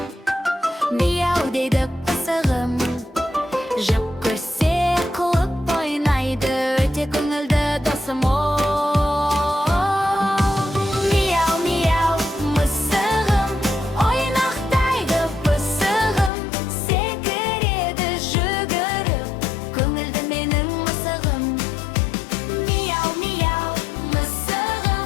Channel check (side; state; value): right; drops out; at 16.3 s